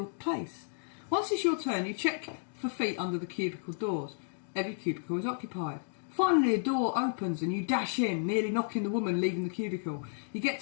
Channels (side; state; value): right; silent; digital silence